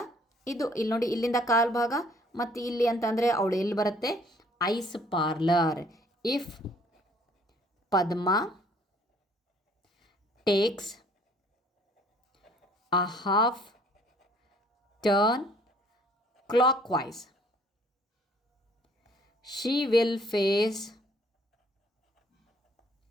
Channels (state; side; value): normal; both; correlation 0.59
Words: ಇದು ಇಲ್ಲಿ ನೋಡಿ ಇಲ್ಲಿಂದ ಕಾಲು ಭಾಗ, ಮತ್ತು ಇಲ್ಲಿ ಅಂತಂದರೆ ಅವಳು ಎಲ್ಲಿ ಬರುತ್ತೆ, ice parlour. If Padma takes a half turn clockwise, she will face